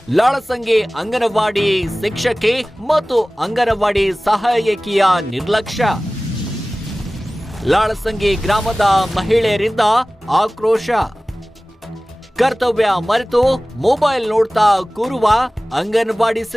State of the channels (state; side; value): normal; both; correlation 0.98